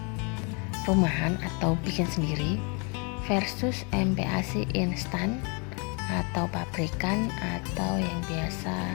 rumahan atau bikin sendiri versus MPASI instan atau pabrikan atau yang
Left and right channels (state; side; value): quieter; right; 33.8 dB